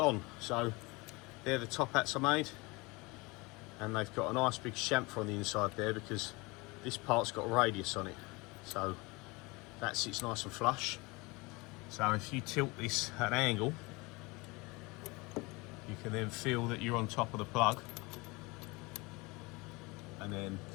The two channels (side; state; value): right; quieter; 25.2 dB